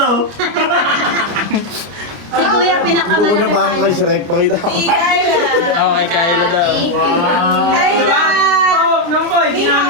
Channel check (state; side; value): late; left; 29 ms